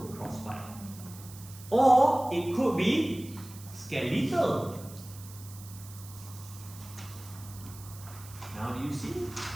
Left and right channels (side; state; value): right; noise; hiss, 17 dB below the sound